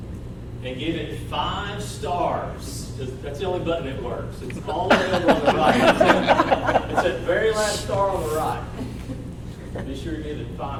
and give it 5 stars. That's the only button that works. It's all the way over on the right. It's that very last star on the right. Be sure to give it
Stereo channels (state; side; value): identical; both; correlation 1.00